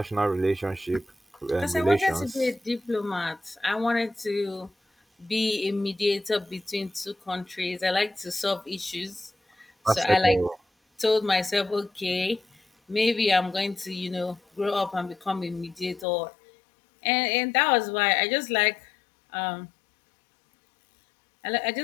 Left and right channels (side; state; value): right; drops out; at 16.1 s